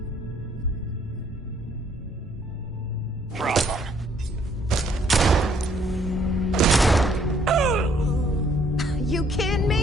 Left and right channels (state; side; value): normal; both; correlation 0.65